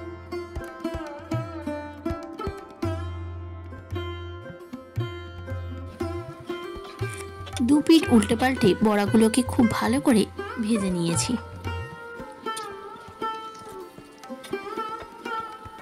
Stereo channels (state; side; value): identical; both; correlation 1.00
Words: দু পিঠ উল্টে পাল্টে বড়াগুলোকে খুব ভালো করে ভেজে নিয়েছি।